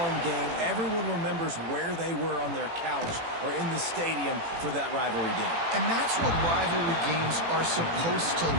game. Everyone remembers where they were on their couch or in the stadium for that rivalry game. And that's what rivalry games are supposed to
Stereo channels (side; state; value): left; late; 18 ms